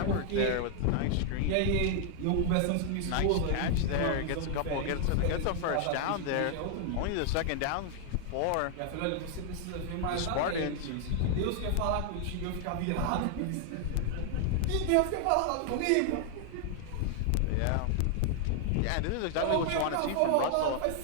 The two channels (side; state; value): both; different; correlation 0.00